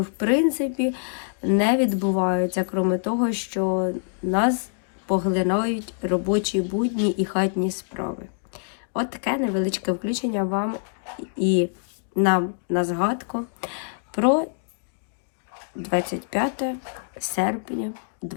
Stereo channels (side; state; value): right; silent; digital silence